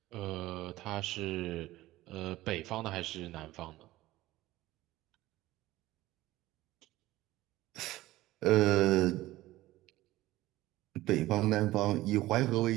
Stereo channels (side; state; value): left; quieter; 17.0 dB